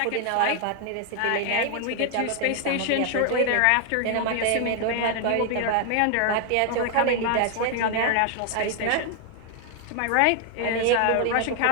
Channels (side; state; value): both; different; correlation 0.00